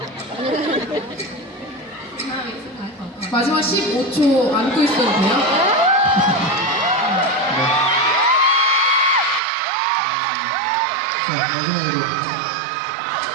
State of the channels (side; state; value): left; drops out; at 9.4 s